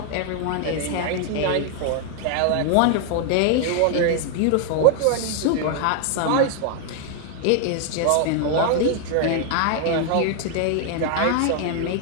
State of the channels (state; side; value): different; both; correlation 0.00